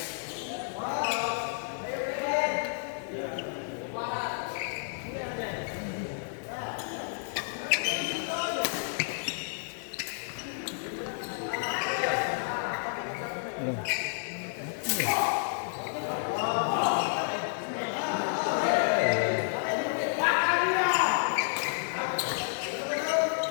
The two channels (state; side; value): silent; right; 57 dB below the other